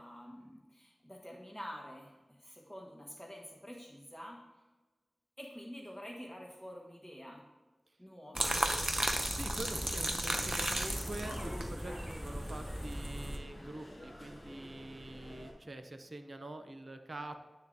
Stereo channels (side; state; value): both; normal; correlation 0.95